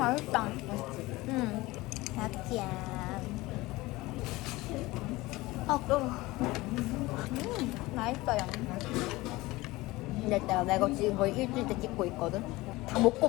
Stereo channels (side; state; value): right; quieter; 20.2 dB